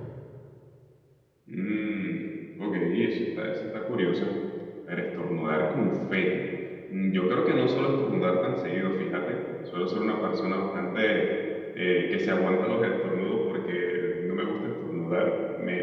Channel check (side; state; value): both; identical; correlation 1.00